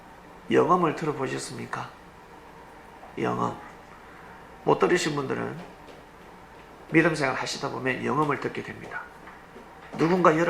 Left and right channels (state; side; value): identical; both; correlation 1.00